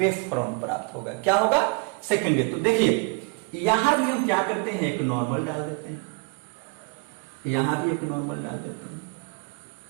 फ्रंट प्राप्त होगा। क्या होगा? सेकेंडरी। तो देखिए यहां भी हम क्या करते हैं? एक नॉर्मल डाल देते हैं, यहां भी एक नॉर्मल डाल देते हैं।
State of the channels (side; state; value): left; quieter; 30.0 dB